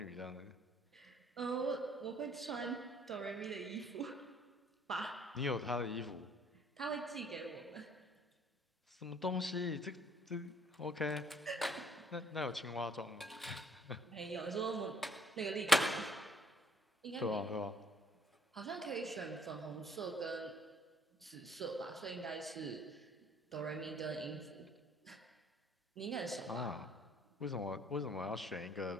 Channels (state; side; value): normal; both; correlation 0.61